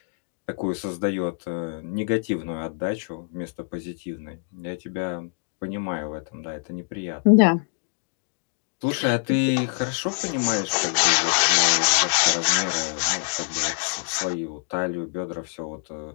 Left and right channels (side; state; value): right; silent; digital silence